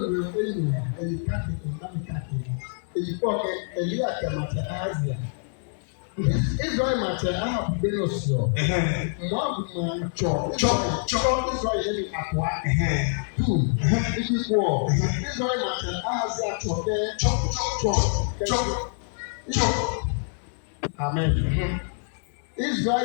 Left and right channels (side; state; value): right; silent; digital silence